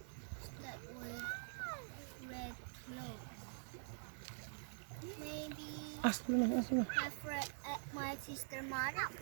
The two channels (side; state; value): left; silent; digital silence